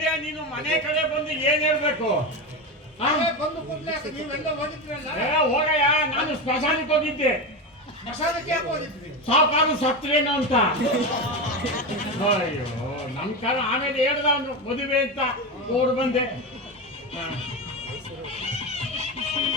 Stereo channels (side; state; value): both; normal; correlation 0.18